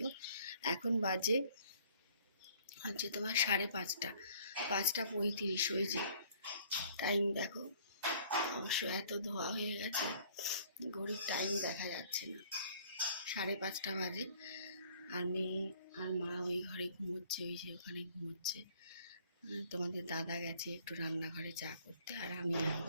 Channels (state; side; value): inverted; both; correlation -0.57